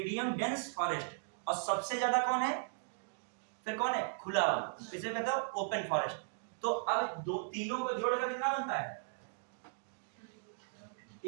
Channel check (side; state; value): left; silent; digital silence